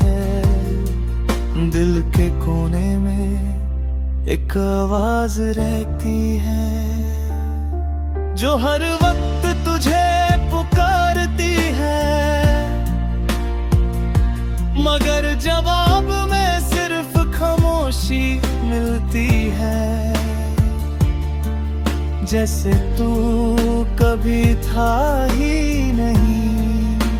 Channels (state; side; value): identical; both; correlation 1.00